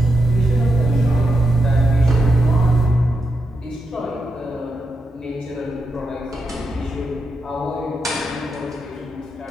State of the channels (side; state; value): both; normal; correlation 0.85